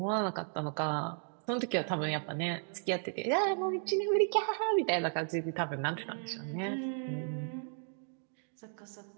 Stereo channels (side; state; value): left; silent; 55 dB below the other